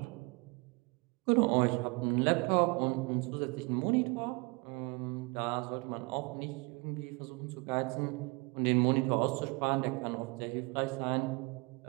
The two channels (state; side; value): quieter; left; 28.5 dB